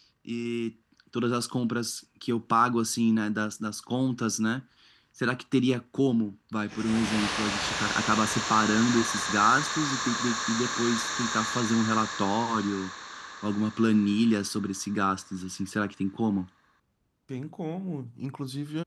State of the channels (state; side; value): identical; both; correlation 1.00